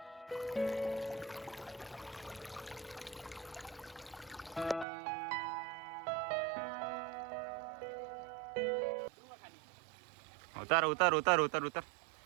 उतर उतर उतर उतर उतर.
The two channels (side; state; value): left; drops out; at 4.9 s